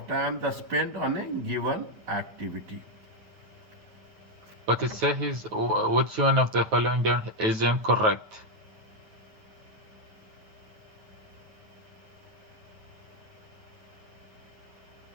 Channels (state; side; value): late; left; 9.3 ms